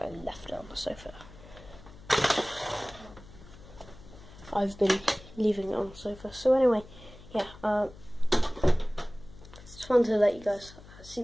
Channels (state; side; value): noise; left; hum, 19 dB below the sound